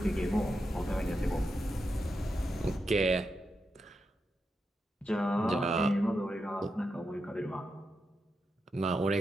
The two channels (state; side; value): normal; both; correlation 0.86